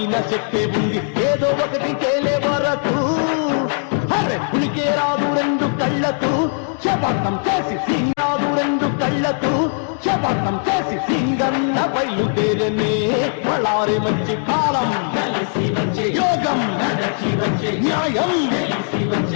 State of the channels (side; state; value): right; silent; 56 dB below the other